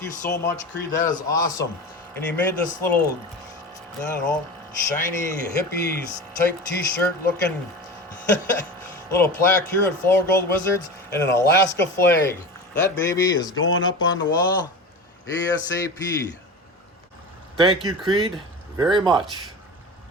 you so much, Creed. That is awesome. And he made this little, I don't know, shiny hippies type t-shirt looking little plaque here at Flourgoldwizards and an Alaska flag. That baby is going up on the wall ASAP. Thank you, Creed, very much.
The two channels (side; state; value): both; normal; correlation 0.29